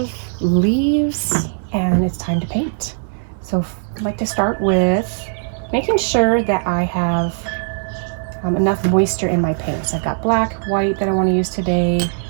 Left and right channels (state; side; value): silent; left; digital silence